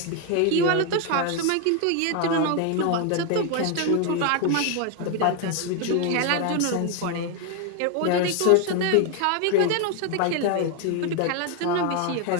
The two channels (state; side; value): different; both; correlation 0.01